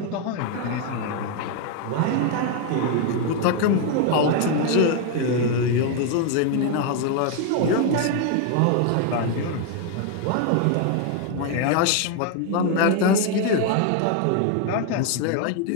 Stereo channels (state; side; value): different; both; correlation 0.01